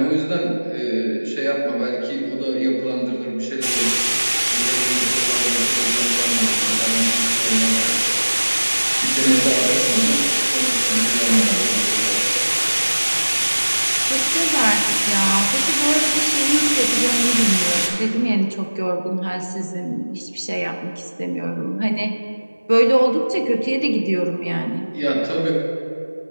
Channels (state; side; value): inverted; both; correlation -1.00